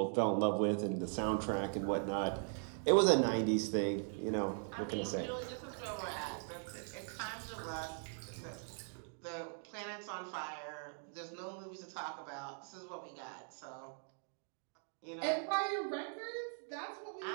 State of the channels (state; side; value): silent; left; 51 dB below the other